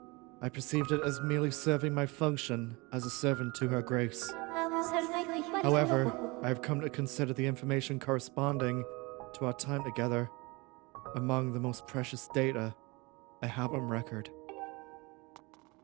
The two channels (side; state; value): left; quieter; 25.7 dB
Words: I perceived it as merely serving my function as a servant to her grace. However, I have come to consider the information corresponding to our time together among the most precious data I have on record.